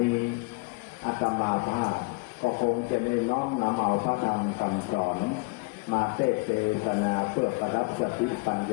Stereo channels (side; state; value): right; quieter; 27.1 dB